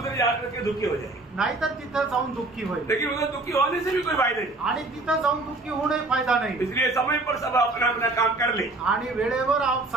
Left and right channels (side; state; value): left; quieter; 3.1 dB